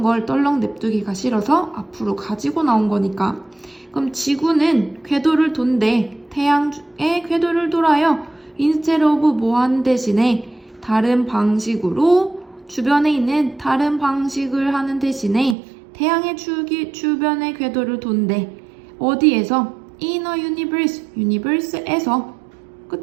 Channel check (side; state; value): left; drops out; at 15.6 s